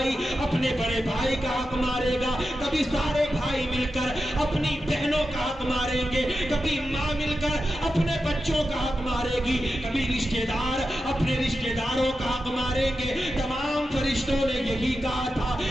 اپنے بڑے بھائی کا حق مارے گا، کبھی سارے بھائی مل کر اپنی بہنوں کا حق ماریں گے، کبھی ماں مل کر اپنے بچوں کا حق مارے گی، کبھی رشتہ دار اپنے رشتہ داروں کا حق ماریں گے۔ تمام فرشتوں نے یہی کہا تھا،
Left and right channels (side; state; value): both; normal; correlation 0.90